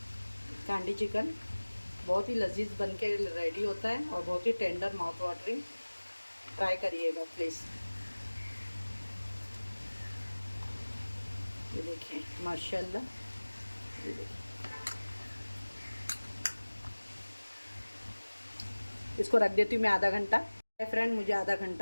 कांडी चिकन बहुत ही लजीज बन के रेडी होता है और बहुत ही टेंडर माउथ वाटरिंग। ट्राई करिएगा प्लीज़। ये देखिए माशाल्लाह, ये देखिए। इसको रख देती हूँ मैं आधा घंटा। फ्रेंड, मुझे आधा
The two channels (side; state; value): both; inverted; correlation -1.00